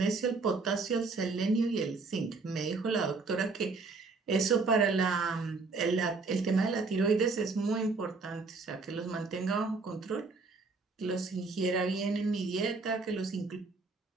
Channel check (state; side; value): quieter; left; 4.1 dB